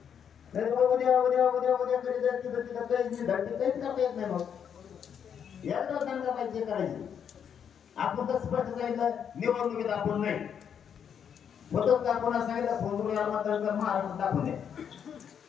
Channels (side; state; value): right; quieter; 8.0 dB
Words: नाही उद्या उद्या उद्या उद्या कधी जायचं तिथं काहीच धडते काहीच करता येत नाही. मग एकदा दंगा पाहिजे करायची. आपण तर स्पष्ट सांगितलं निवडणुकीत आपण नाही होतच का. कोणा सांगितलं फोन मतदान कर महाराष्ट्रात दाखवून द्या.